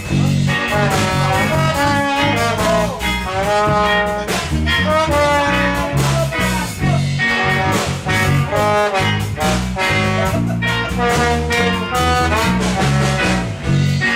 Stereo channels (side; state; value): both; identical; correlation 1.00